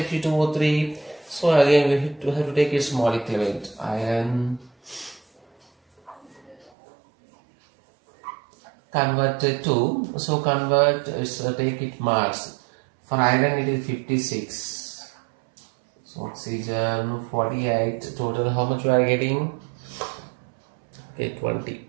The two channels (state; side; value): drops out; left; at 6.7 s